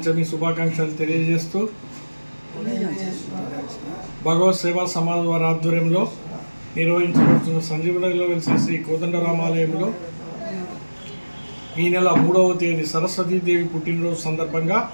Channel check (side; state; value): both; inverted; correlation -1.00